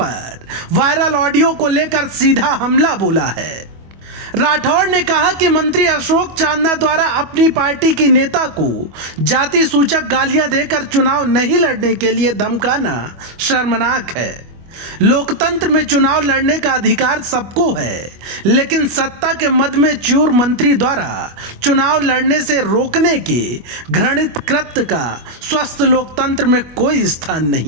वायरल ऑडियो को लेकर सीधा हमला बोला है। राठौड़ ने कहा कि मंत्री अशोक चांदना द्वारा अपनी पार्टी की नेता को जाति सूचक गालियां देकर चुनाव नहीं लड़ने के लिए धमकाना शर्मनाक है। लोकतंत्र में चुनाव लड़ने का अधिकार सबको है, लेकिन सत्ता के मद में चूर मंत्री द्वारा चुनाव लड़ने से रोकने के घृणित कृत्य का स्वस्थ लोकतंत्र में कोई स्थान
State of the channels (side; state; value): left; late; 25 ms